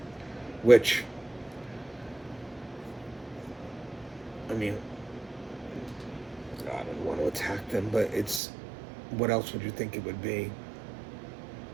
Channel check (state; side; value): drops out; left; at 8.4 s